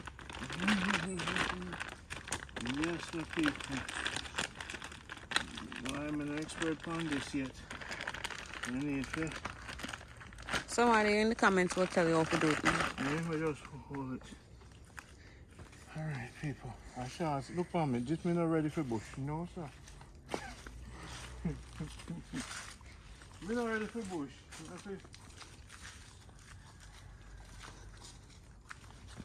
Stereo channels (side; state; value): both; identical; correlation 1.00